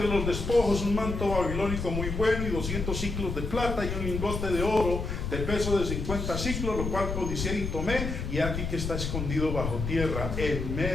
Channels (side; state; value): left; noise; rumble, 4 dB below the sound